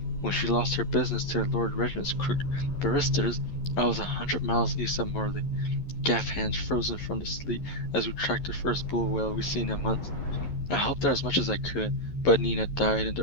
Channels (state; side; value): late; right; 11 ms